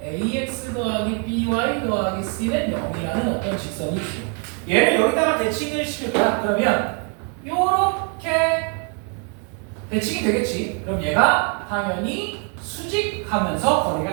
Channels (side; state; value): left; quieter; 39.5 dB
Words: ax 더하기 by 더하기 c는 0이라는 어떤 직선이 있어요. 얘를 여기다가 대칭을 시킬 거야. 그러면 요렇게 대칭이 되겠지. 그럼 얘가 당연히 수직하면서